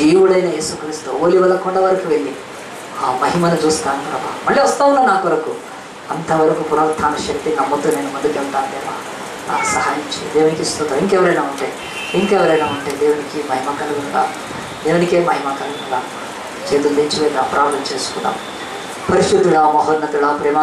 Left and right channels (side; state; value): both; identical; correlation 1.00